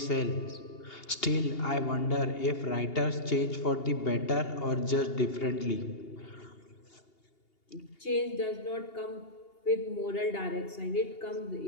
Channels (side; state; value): right; late; 2.8 ms